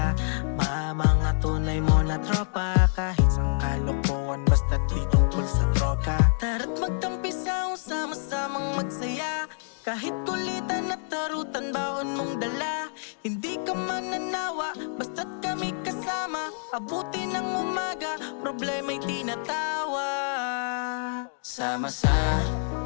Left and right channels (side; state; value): right; silent; digital silence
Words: mga tunay mo na tropa. Kahit sang kalokohan basta't di tungkol sa droga. Tara't magtampi sa sama-samang magsaya. Kahit kulitan at tarutan baon mong dala. Hindi ka mananawa basta't kami kasama. Abuti ng umaga, problema'y tinatawa.